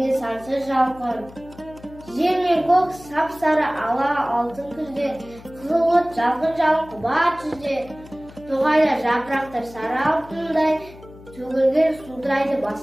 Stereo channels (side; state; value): left; noise; hum, 20 dB below the sound